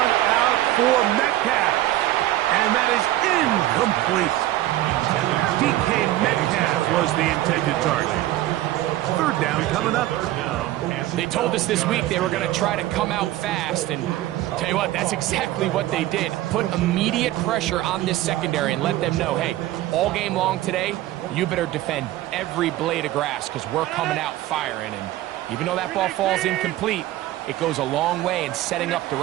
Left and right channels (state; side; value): quieter; left; 15.2 dB